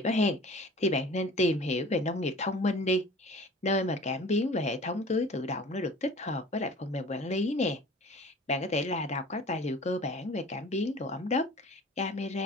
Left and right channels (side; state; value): both; normal; correlation 0.44